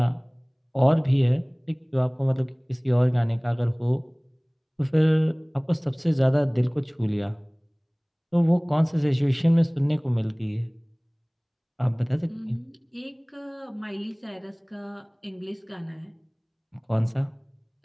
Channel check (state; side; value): identical; both; correlation 1.00